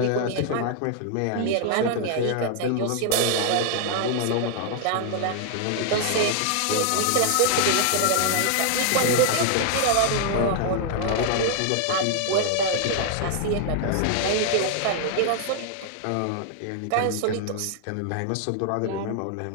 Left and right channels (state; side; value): different; both; correlation 0.00